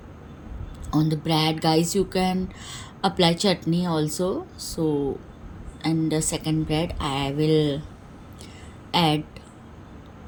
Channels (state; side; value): identical; both; correlation 1.00